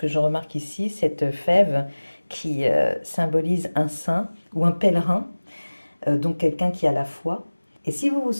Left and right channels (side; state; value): both; inverted; correlation -1.00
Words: je remarque ici, cette fève qui symbolise un saint ou un pèlerin, donc quelqu'un qui a la foi. Et si vous vous